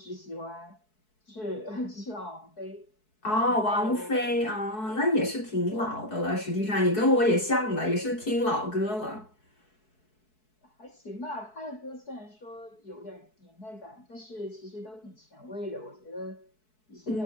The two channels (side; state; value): right; late; 4.6 ms